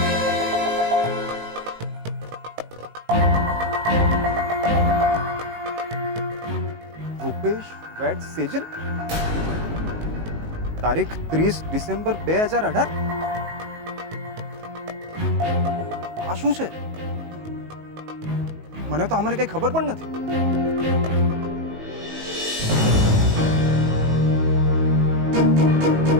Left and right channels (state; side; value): late; left; 19 ms